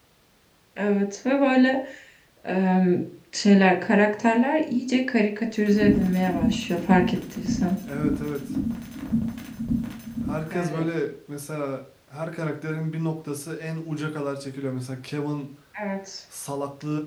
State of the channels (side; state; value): both; identical; correlation 1.00